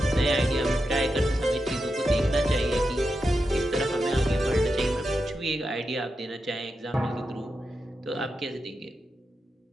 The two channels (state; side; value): normal; both; correlation 0.88